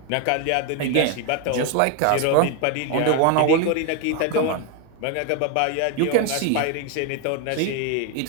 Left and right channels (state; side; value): different; both; correlation 0.01